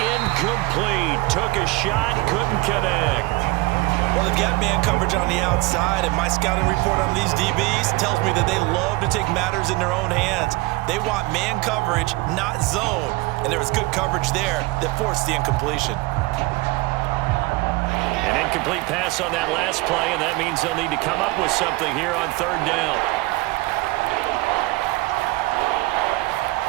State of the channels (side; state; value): left; quieter; 22.6 dB